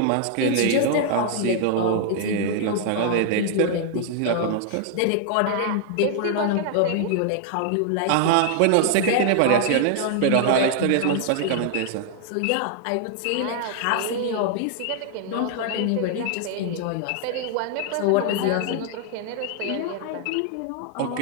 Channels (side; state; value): both; different; correlation 0.00